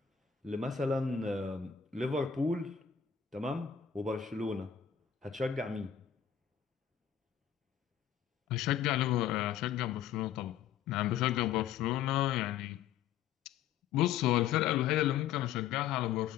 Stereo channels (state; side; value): quieter; right; 8.9 dB